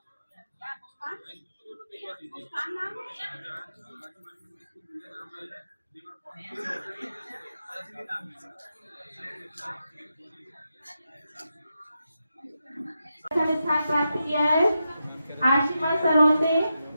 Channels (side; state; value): both; inverted; correlation -0.87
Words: स्थान प्राप्त किया है आशिमा सरोते